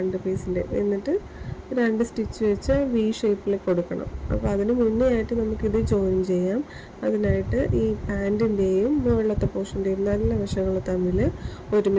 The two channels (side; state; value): both; identical; correlation 1.00